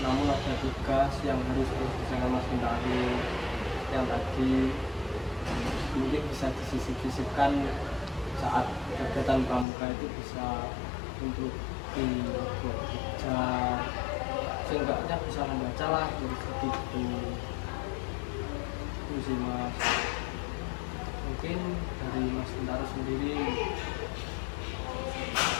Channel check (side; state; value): right; drops out; at 9.7 s